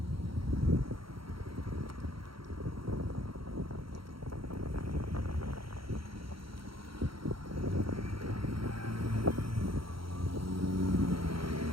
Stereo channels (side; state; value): left; late; 0.74 ms